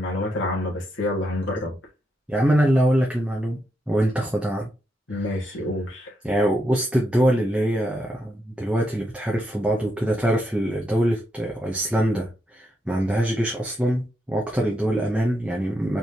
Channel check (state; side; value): normal; both; correlation 0.81